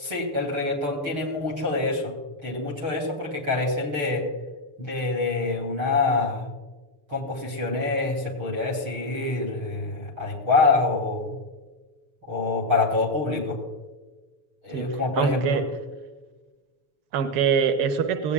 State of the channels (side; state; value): left; late; 6.9 ms